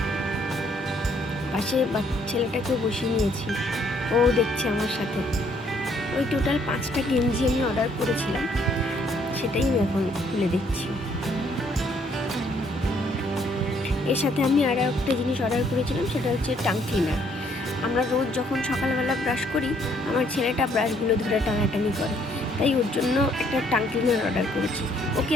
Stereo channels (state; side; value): normal; both; correlation 0.66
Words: পাশে ছেলেটাকেও বসিয়ে নিয়েছি, ও দেখছে আমার সাথে। ওই টোটাল 5টা গেঞ্জি আমি অর্ডার করেছিলাম, সেটাই আমি এখন খুলে দেখছি। এর সাথে আমি আরও একটা জিনিস অর্ডার করেছিলাম, সেটা হচ্ছে টাং ক্লিনার। আমরা রোজ যখন সকালবেলা ব্রাশ করি, আমার ছেলেটা ব্রাশগুলো ধরে টানাটানি করে, তাই ওর জন্য একটা টাং ক্লিনার অর্ডার করেছি। ওকে